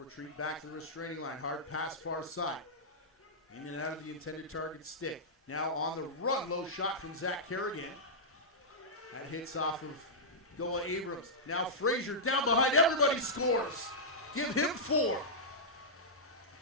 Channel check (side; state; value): both; normal; correlation -0.12